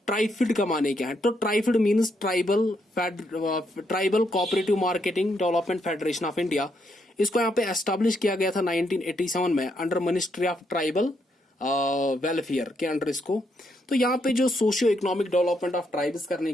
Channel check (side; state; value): both; normal; correlation 0.77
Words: ट्राइफिड का माने क्या है। तो TRIFED means tribal cooperative marketing development federation of India. इसको यहाँ पे एस्टैब्लिश किया गया था 1987 में under ministry of tribal welfare के अंडर इसको। तो यहाँ पे जो socio economic development of tribes करने